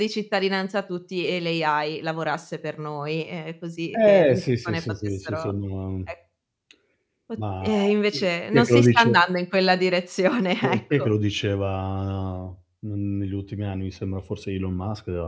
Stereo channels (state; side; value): identical; both; correlation 1.00